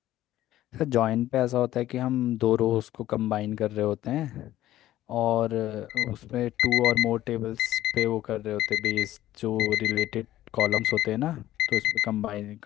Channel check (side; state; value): right; quieter; 14.1 dB